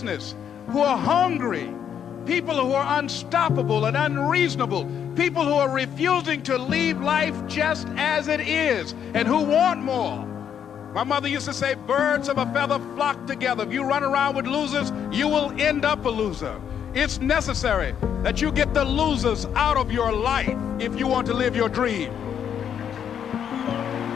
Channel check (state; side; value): quieter; right; 8.6 dB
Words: who are hungry, people who are unstoppable and unreasonable, people who are refusing to leave life just as it is and who want more. My mother used to say, birds of a feather flock together. If you run around with losers, you will end up a loser. It's necessary that you get the losers out of your life if you want to live your dream.